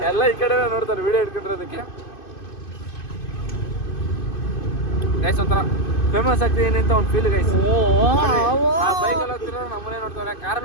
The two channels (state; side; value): late; right; 2.5 ms